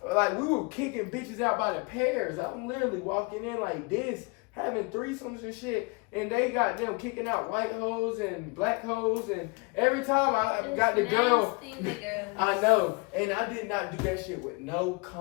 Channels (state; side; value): quieter; right; 30.4 dB